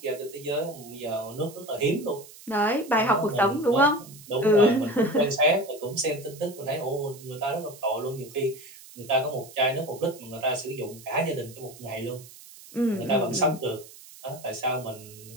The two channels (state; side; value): noise; right; hiss, 19 dB below the sound